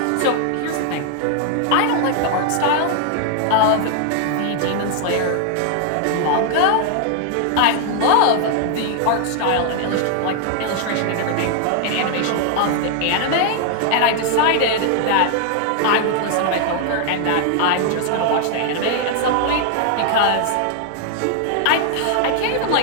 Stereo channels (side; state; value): both; different; correlation 0.00